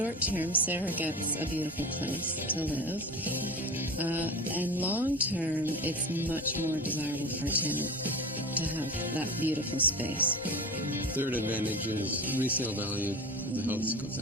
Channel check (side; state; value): both; normal; correlation 0.31